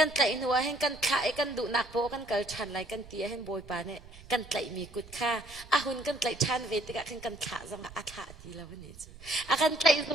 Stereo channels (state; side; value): noise; right; rumble, 19 dB below the sound